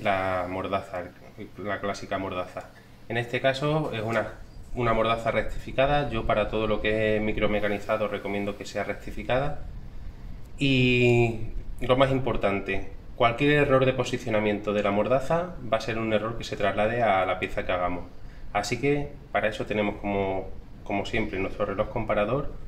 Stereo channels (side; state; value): both; identical; correlation 1.00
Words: la mordaza, la clásica mordaza. En este caso es una mordaza rectificada. Yo para todo lo que es micromecanizado recomiendo que sea rectificada. Y lo más importante, cualquier error de posicionamiento de la mordaza va a ser un error que se traslade a la pieza que hagamos. Así que para eso tenemos como siempre nuestro reloj comparador